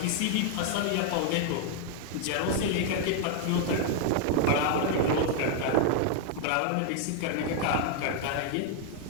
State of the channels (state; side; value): different; both; correlation 0.00